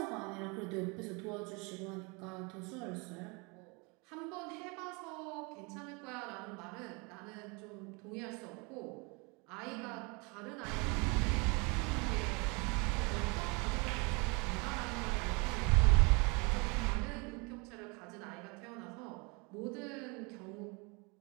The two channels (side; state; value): left; quieter; 29.9 dB